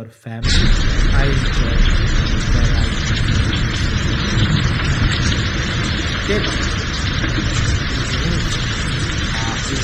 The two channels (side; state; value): both; identical; correlation 1.00